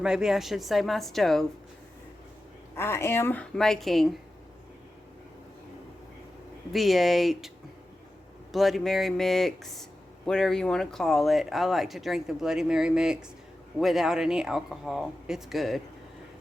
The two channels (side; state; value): both; normal; correlation 0.93